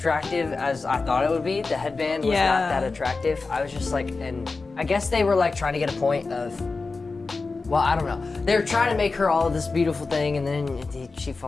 as I thought it would be. The headband was Yeah. not that attractive. I was just like, and I guess they were like trying to get a point of, well, I don't know. They were trying to make her all of this beautiful thing, and then she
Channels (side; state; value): right; quieter; 4.0 dB